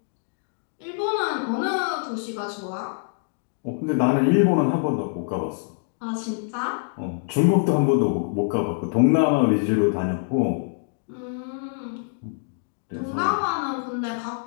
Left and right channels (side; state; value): right; silent; digital silence